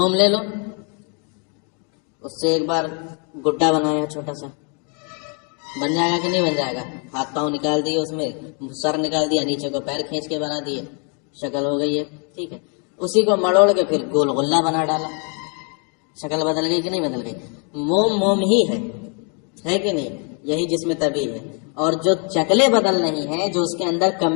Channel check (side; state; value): right; quieter; 38.3 dB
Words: لے لو، اس سے ایک بار گڈا بنایا چھوٹا سا، بن جائے گا کہ نہیں بن جائے گا؟ ہاتھ پاؤں نکال دیے، اس میں سر نکال دیا، نیچے کو پیر کھینچ کے بنا دیے، شکل ہو گئی ہے، ٹھیک ہے۔ اسی کو مڑوڑ کے پھر گول غلہ بنا ڈالا، شکل بدل گئی کہ نہیں بدل گئی؟ موم ہی ہے کہ نہیں؟ یہی جسم طبعی ہے۔ اور جو شکلیں بدل نہیں ہیں، جو اس کے اندر